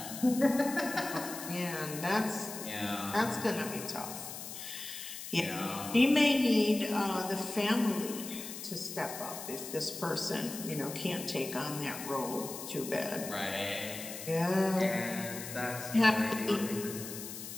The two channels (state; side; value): noise; left; hiss, 9 dB below the sound